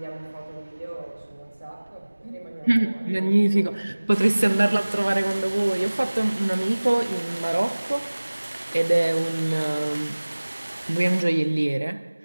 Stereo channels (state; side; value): inverted; both; correlation -1.00